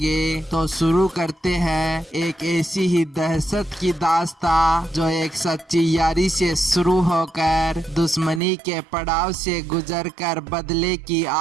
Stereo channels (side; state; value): left; drops out; at 8.4 s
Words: तो शुरू करते हैं एक ऐसी ही दहशत की दास्तां जो एक सच्ची यारी से शुरू होकर दुश्मनी के पड़ाव से गुजरकर बदले की